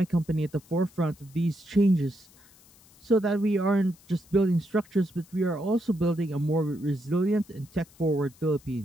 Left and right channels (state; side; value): noise; left; hiss, 27 dB below the sound